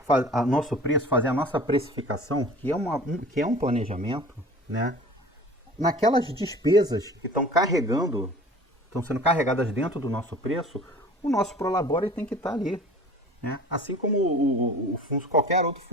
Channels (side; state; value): both; normal; correlation 0.43